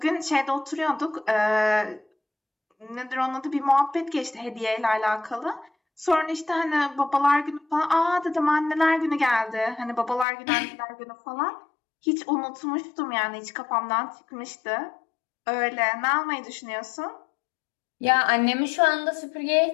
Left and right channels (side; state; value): right; drops out; at 10.2 s